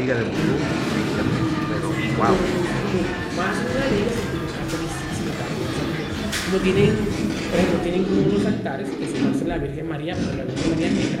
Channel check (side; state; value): both; identical; correlation 1.00